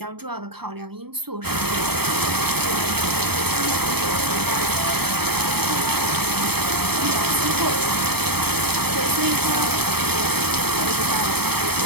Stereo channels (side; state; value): left; late; 0.97 ms